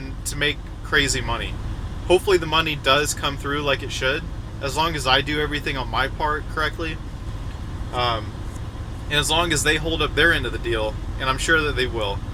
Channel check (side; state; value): both; identical; correlation 1.00